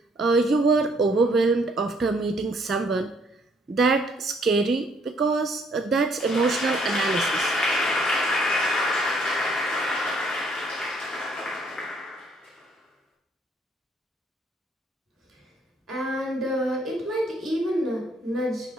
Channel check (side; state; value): both; normal; correlation 0.65